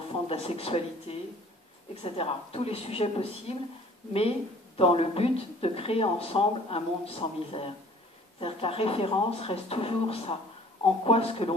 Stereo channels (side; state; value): both; normal; correlation 0.52